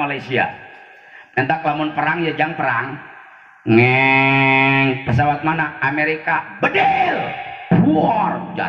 Entah lamun perang ya jang perang. Ngeng, pesawat mana? Amerika, bedel, war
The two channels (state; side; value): identical; both; correlation 1.00